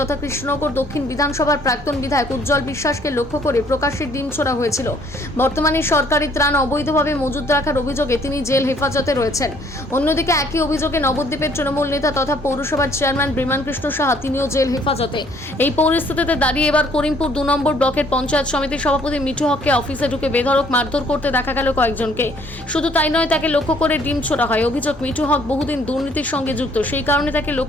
তথা কৃষ্ণনগর দক্ষিণ বিধানসভার প্রাক্তন বিধায়ক উজ্জ্বল বিশ্বাসকে লক্ষ্য করে প্রকাশ্যে ডিম ছোড়া হয়েছিল। বর্তমানে সরকারি ত্রাণ অবৈধভাবে মজুত রাখার অভিযোগে তিনি জেল হেফাজতে রয়েছেন। অন্যদিকে একই অভিযোগে নবদ্বীপের তৃণমূল নেতা তথা পৌরসভার চেয়ারম্যান বিমান কৃষ্ণ সাহা তিনিও জেল হেফাজতে। এই পরিস্থিতিতে দাঁড়িয়ে এবার করিমপুর 2 নম্বর ব্লকের পঞ্চায়েত সমিতির সভাপতি মিঠু হককে অফিসে ঢুকে বেধড়ক মারধর করতে দেখা গেল কয়েকজনকে। শুধু তাই নয়, তাকে লক্ষ্য করে ডিম ছোড়া হয়। অভিযোগ, মিঠু হক বহুদিন দুর্নীতির সঙ্গে যুক্ত, সেই কারণে তাকে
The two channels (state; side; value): normal; both; correlation 0.62